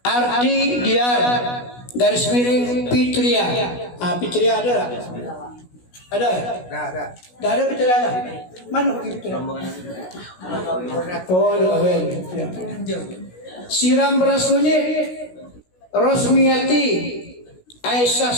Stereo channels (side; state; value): right; late; 16 ms